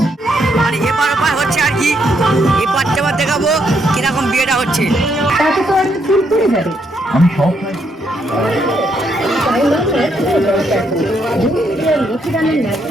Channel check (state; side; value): normal; both; correlation 0.75